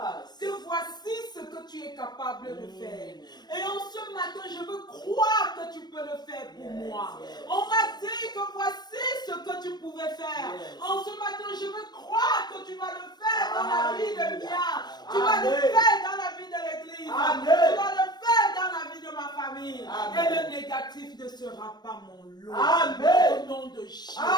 que voici ce que tu es capable de Mm. faire. Et en ce matin, je veux croire que tu peux le faire pour Yes, moi. yes. On m'a dit que voici ce que tu pouvais faire. Yes. En ce matin, je veux croire que tu vas le faire dans la vie de Alléluia. Mia. Tu vas le Amen. faire dans la vie de l'église. Amen. Tu vas le faire dans la vie de ma famille. Amen. Et le négatif ne sera pas mon lot. Amen. Au nom de Jésus.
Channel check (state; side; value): late; right; 0.20 ms